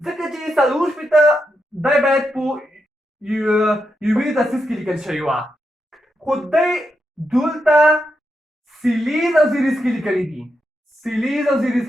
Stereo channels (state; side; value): normal; both; correlation 0.85